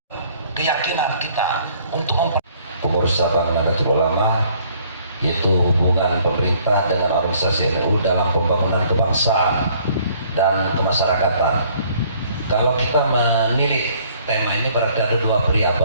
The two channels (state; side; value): inverted; both; correlation -0.60